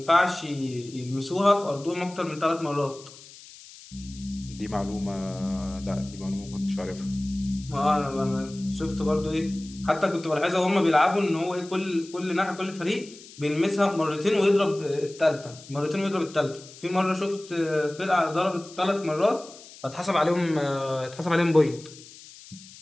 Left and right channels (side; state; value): left; noise; hiss, 19 dB below the sound